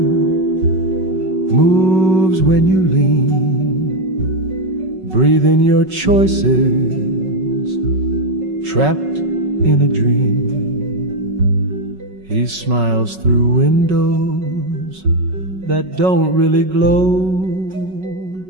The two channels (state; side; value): late; left; 5.3 ms